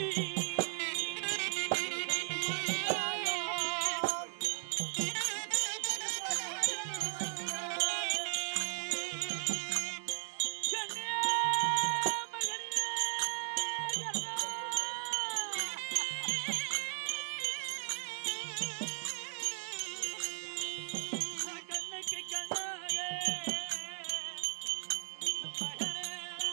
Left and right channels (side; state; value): left; silent; 53 dB below the other